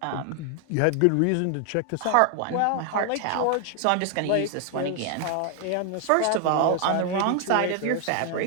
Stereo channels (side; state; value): both; different; correlation 0.00